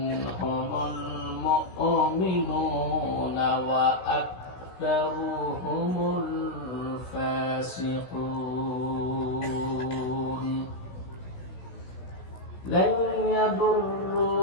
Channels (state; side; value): late; right; 16 ms